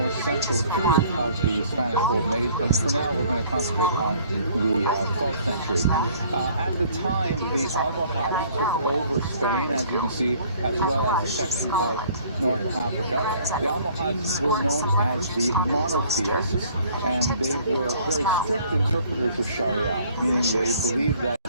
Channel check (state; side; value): inverted; both; correlation -0.56